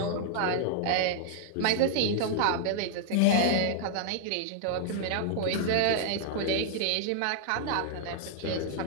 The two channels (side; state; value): both; different; correlation -0.01